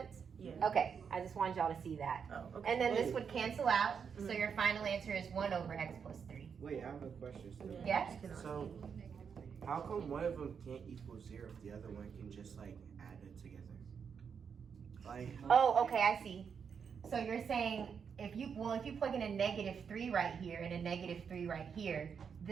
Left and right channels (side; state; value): left; quieter; 6.7 dB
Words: Yeah. Okay, I just wanted y'all to see that. Oh, okay. And then this would cancel out, so your final answer is 1 over x plus 3. Wait, I have a question still. Yeah? So, how come one of them can't equal 0 if the other one can just like add it together? Like, Oh, okay, I see. So you're saying if you plug in a negative 3 right here and a negative 3 right here,